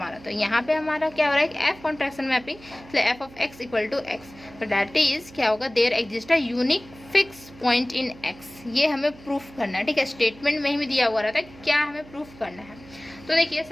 तो यहाँ पे हमारा क्या हो रहा है कि f कॉन्ट्रैक्शन मैपिंग, इसलिए f of x equal to x. तो दैट इज क्या होगा, there exist a unique fix point in x। ये हमें प्रूफ करना है, ठीक है। स्टेटमेंट में ही दिया हुआ रहता है क्या हमें प्रूफ करना है। तो देखिए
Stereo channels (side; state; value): right; noise; hum, 21 dB below the sound